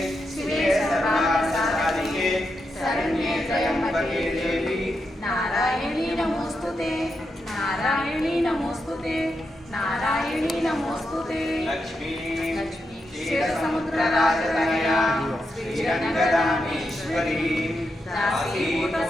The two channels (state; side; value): normal; both; correlation 0.85